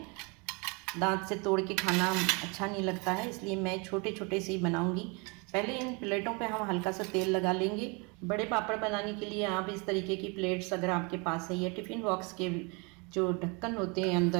दांत से तोड़ के खाना अच्छा नहीं लगता है, इसलिए मैं छोटे छोटे से ही बनाऊँगी। पहले इन प्लेटों पे हम हल्का सा तेल लगा लेंगे। बड़े पापड़ बनाने के लिए आप इस तरीके की प्लेट्स अगर आपके पास है, या टिफ़िन बॉक्स के जो ढक्कन होते हैं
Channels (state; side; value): quieter; left; 30.7 dB